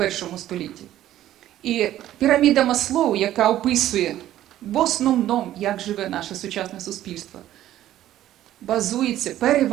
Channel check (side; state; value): left; quieter; 13.1 dB